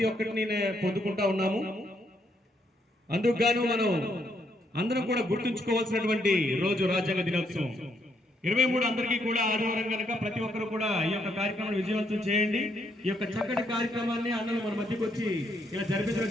ఒక్కటిని పొందుకుంటా ఉన్నాము. అందుకు గాను మనం అందరం కూడా గుర్తుంచుకోవాల్సినటువంటి రోజు రాజ్యాంగ దినోత్సవం 23 అందరికీ కూడా ఆదివారం కనుక ప్రతి ఒక్కరు కూడా ఈ యొక్క కార్యక్రమాన్ని విజయవంతం చేయండి. ఈ యొక్క చక్కటి కార్యక్రమాన్ని అన్నలు మన మధ్యకు వచ్చి ఇలా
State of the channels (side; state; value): both; normal; correlation 0.74